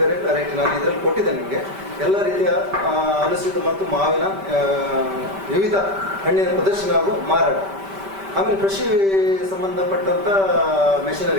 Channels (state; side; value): late; left; 5.1 ms